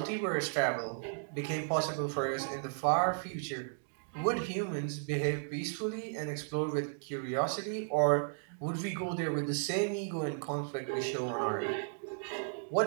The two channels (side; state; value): left; silent; digital silence